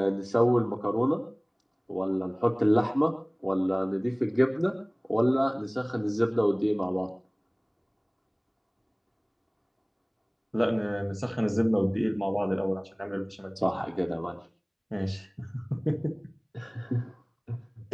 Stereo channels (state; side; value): identical; both; correlation 1.00